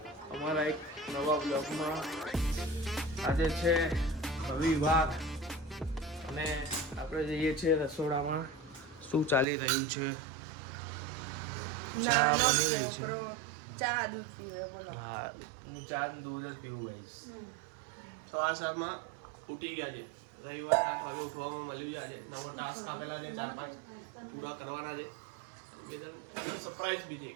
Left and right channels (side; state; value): left; drops out; at 9.5 s